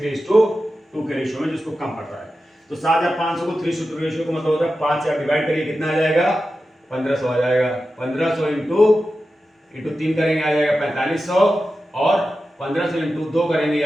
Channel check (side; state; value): both; normal; correlation 0.92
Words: के रेशियो में, जिसको कम पड़ रहा है। तो 7,500 को 3:2 रेशियो को मतलब होता है 5 से आप डिवाइड करिए, कितना आ जाएगा? 1,500 आ जाएगा। 1,500 इंटू 3 करेंगे आ जाएगा 4,500, और 1,500 इंटू 2 करेंगे